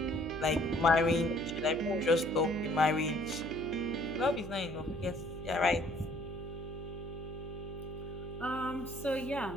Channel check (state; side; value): noise; right; hum, 10 dB below the sound